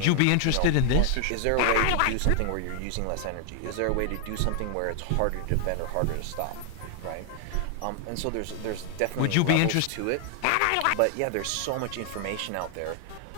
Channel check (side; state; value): both; different; correlation 0.00